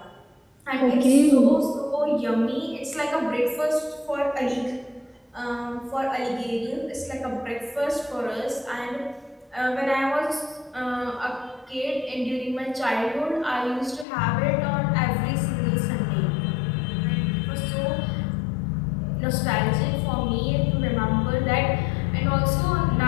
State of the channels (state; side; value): drops out; right; at 14.1 s